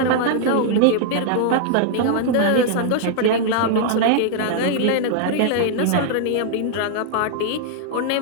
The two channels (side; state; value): both; different; correlation -0.01